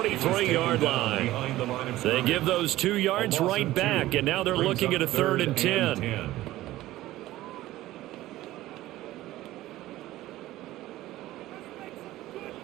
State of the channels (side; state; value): left; quieter; 15.9 dB